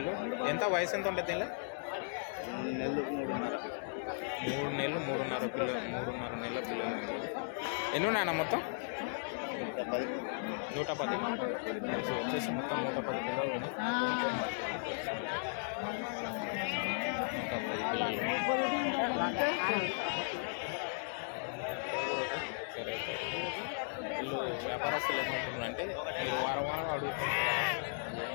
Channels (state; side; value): silent; right; digital silence